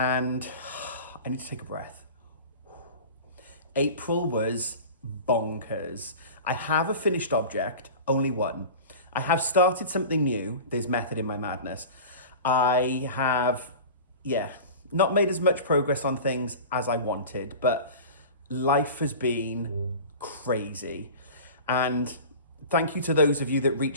I need to take a breath. April was bonkers. I have a finished object, only one. I have started something new. There's method in my madness. I have, not made as much progress on things as I wanted, but life has been crazy. And thank you to those of you that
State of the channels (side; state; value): both; inverted; correlation -0.35